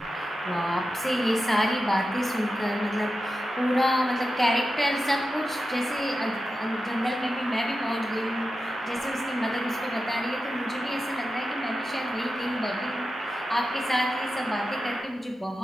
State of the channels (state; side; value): normal; both; correlation 0.91